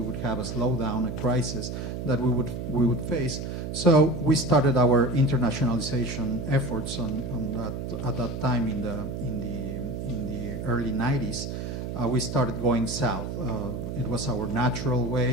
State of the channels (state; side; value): noise; right; hum, 5 dB below the sound